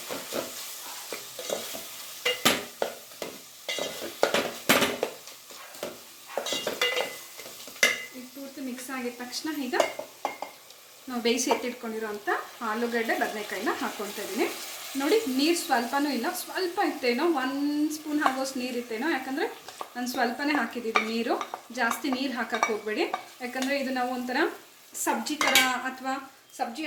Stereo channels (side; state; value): both; identical; correlation 1.00